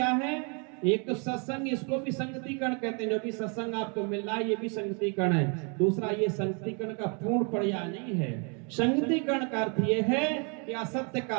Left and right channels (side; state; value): left; quieter; 36.4 dB